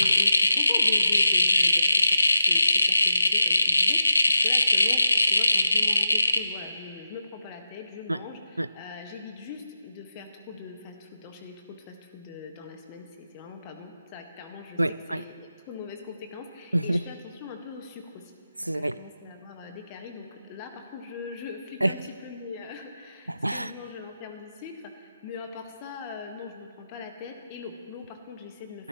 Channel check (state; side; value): inverted; both; correlation -0.89